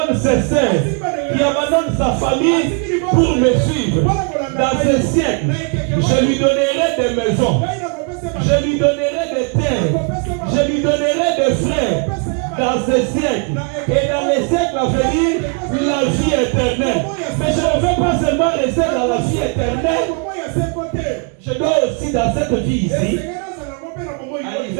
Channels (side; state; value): left; quieter; 35.2 dB